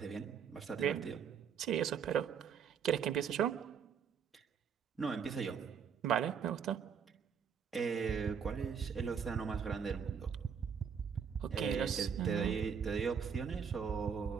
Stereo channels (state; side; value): quieter; left; 7.0 dB